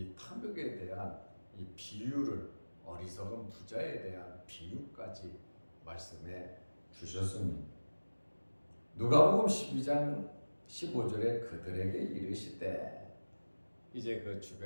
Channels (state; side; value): inverted; both; correlation -1.00